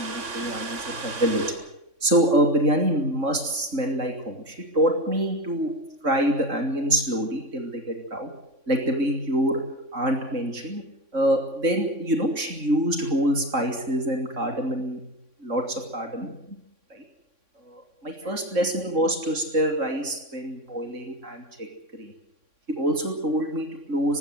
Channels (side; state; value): left; late; 3.6 ms